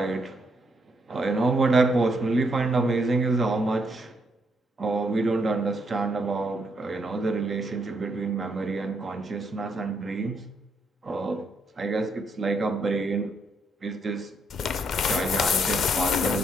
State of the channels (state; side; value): normal; both; correlation 0.75